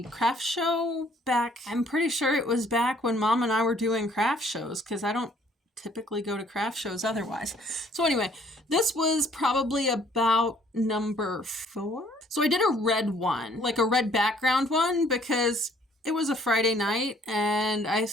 craft show back. I'm pretty sure it was back when Mom and I were doing craft shows, because I don't typically go to craft shows otherwise. So anyway, this was probably about number 4. So I did a red one, like a red background one, because it was a Friday night and I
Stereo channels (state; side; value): normal; both; correlation 0.61